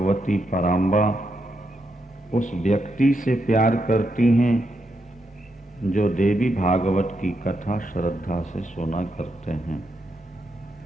पराम्बा उस व्यक्ति से प्यार करती हैं जो देवी भागवत की कथा श्रद्धा से सुना करते हैं।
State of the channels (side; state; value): both; normal; correlation 0.82